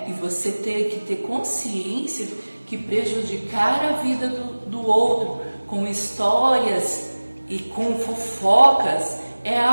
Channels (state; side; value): inverted; both; correlation -1.00